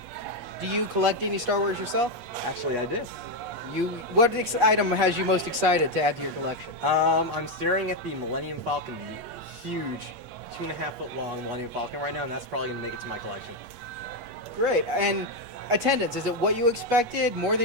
Do you collect any Star Wars yourself? Actually, I do. What item has you most excited to add to your collection? I'm staring at the Millennium Falcon, the huge 2.5-foot long Millennium Falcon right now, and that's probably going to make it to my collection. Great. And attendance, is it what you expected, more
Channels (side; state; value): left; late; 8.3 ms